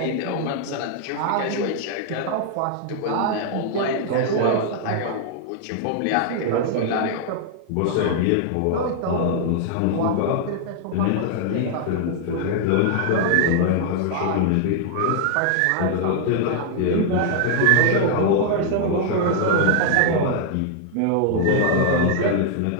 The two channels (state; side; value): different; both; correlation 0.00